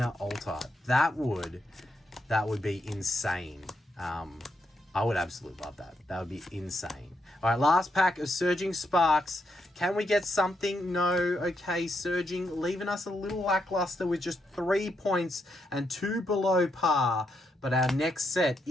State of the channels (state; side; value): normal; both; correlation 0.80